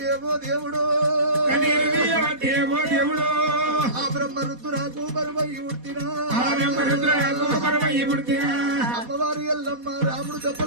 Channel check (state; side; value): late; left; 4.1 ms